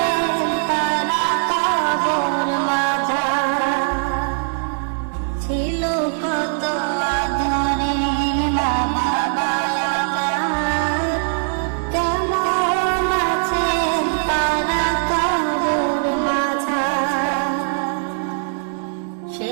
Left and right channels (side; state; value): left; silent; digital silence